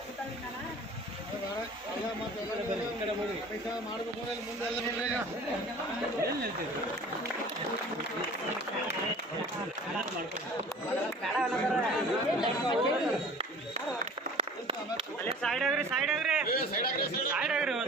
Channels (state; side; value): normal; both; correlation 0.44